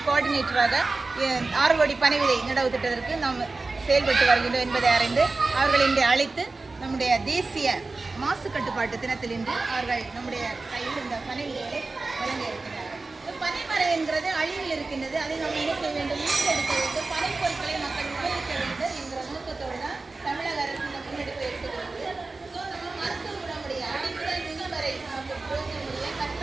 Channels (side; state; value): left; quieter; 3.6 dB